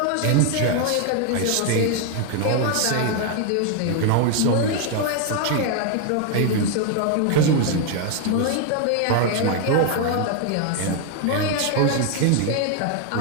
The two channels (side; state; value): both; different; correlation 0.01